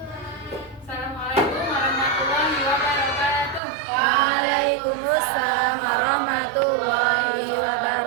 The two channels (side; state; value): left; drops out; at 3.6 s